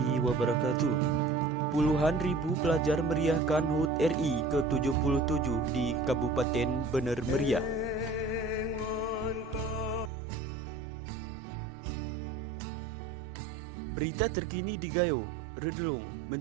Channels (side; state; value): left; drops out; at 10.1 s